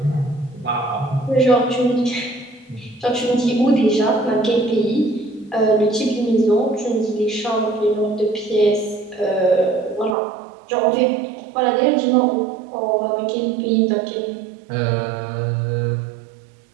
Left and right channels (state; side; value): drops out; left; at 10.2 s